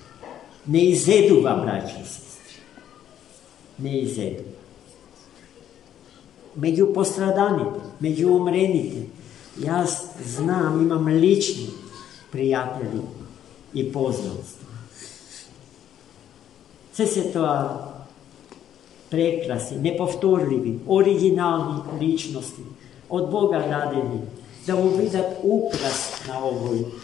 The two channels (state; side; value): quieter; right; 10.5 dB